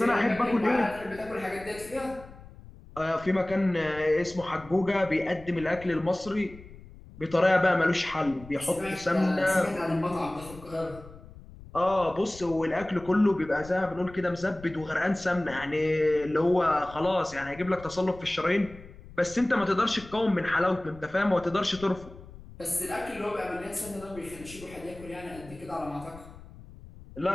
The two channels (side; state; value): left; noise; rumble, 18 dB below the sound